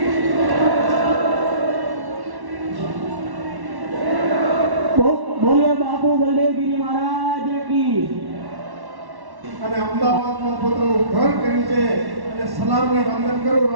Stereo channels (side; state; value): left; late; 1.1 ms